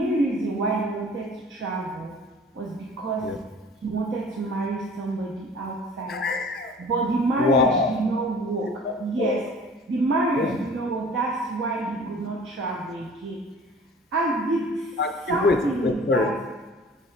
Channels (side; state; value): both; normal; correlation 0.47